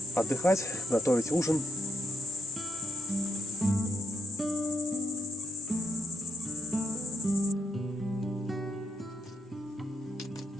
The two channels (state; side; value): normal; both; correlation 0.78